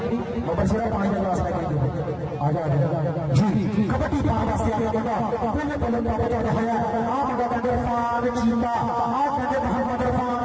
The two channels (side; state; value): both; identical; correlation 1.00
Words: बबरशेरा 5 गिलास लेके आजा जी कबड्डी पाने वास्ते आ गया मुंडा बोले बोले प्राप्त कर रहा है आ मुंडा कहते इरफान चीता आ कहते मोहम्मद इरफान